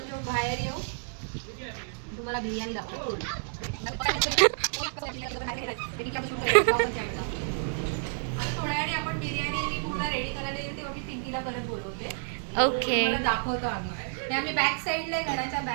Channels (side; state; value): left; silent; 58 dB below the other